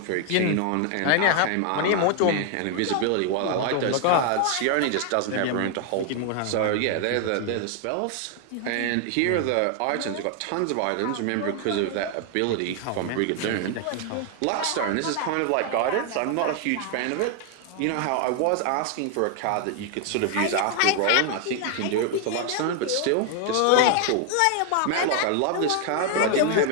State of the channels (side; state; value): both; different; correlation 0.00